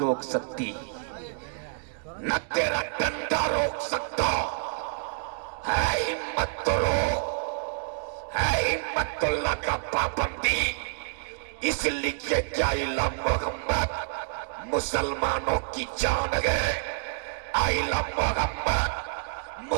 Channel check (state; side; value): silent; left; digital silence